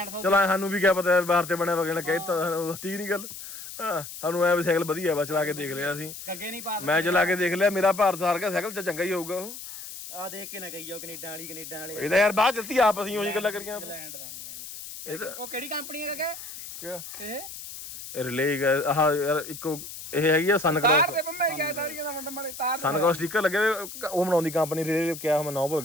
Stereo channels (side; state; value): left; noise; hiss, 11 dB below the sound